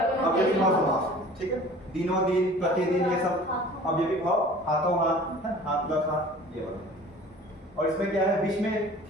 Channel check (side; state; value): both; normal; correlation 0.45